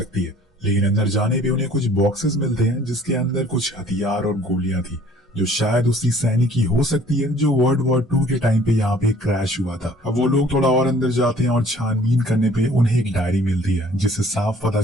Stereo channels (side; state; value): both; normal; correlation 0.55